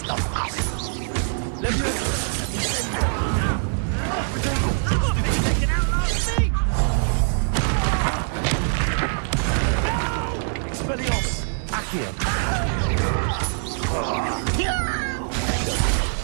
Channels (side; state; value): left; silent; digital silence